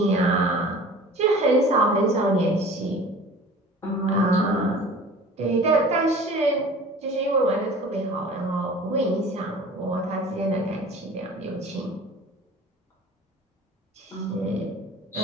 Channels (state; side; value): normal; both; correlation 0.43